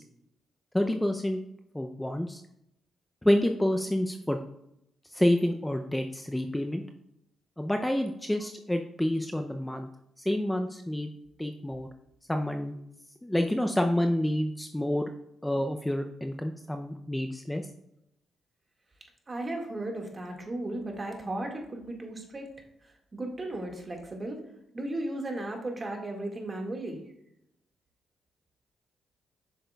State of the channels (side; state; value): both; normal; correlation 0.97